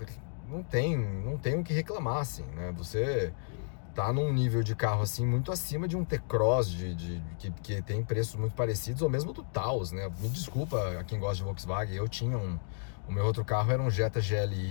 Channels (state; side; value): silent; right; digital silence